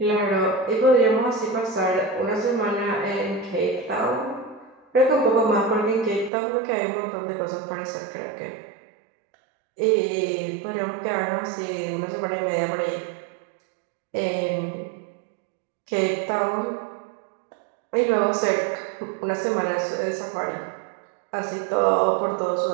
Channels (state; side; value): drops out; left; at 6.3 s